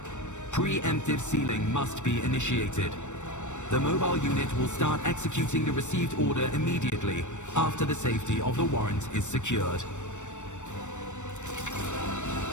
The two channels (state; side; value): late; right; 0.84 ms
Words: preemptive sealing must be initiated. The mobile unit will start executing the received order immediately after the safety of the warrant is secured.